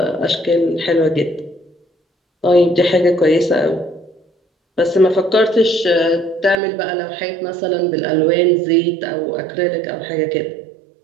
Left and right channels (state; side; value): drops out; left; at 6.6 s